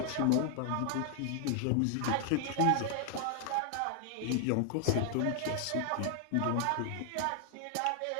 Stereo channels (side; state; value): both; different; correlation 0.00